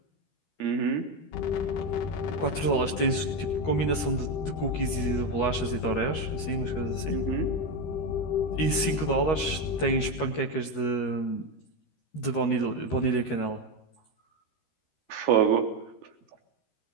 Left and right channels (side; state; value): right; late; 13 ms